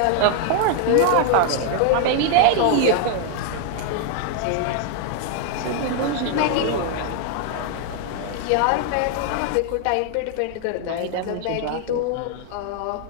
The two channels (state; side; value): different; both; correlation 0.00